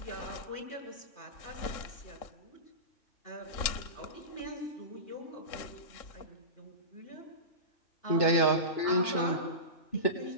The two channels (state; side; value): late; right; 3.7 ms